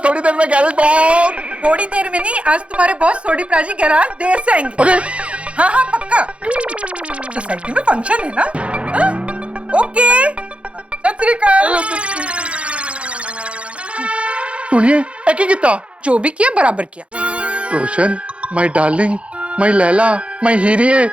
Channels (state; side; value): late; left; 0.061 ms